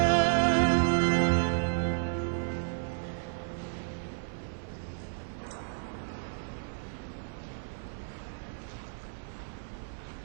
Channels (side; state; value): left; silent; 56 dB below the other